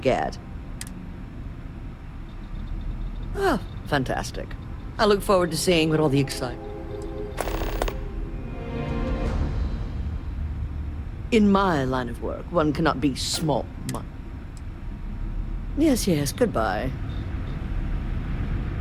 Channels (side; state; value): both; identical; correlation 1.00